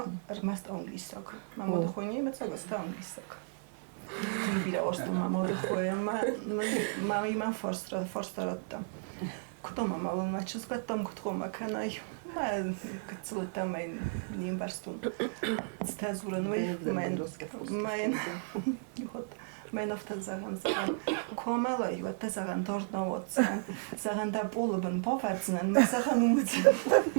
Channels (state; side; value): silent; left; digital silence